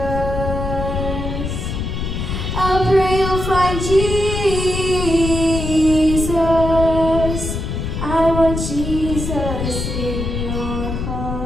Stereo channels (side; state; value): left; noise; rumble, 4 dB below the sound